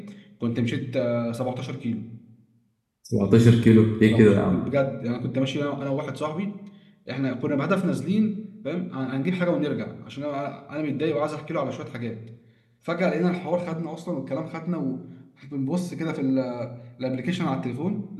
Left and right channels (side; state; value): both; identical; correlation 1.00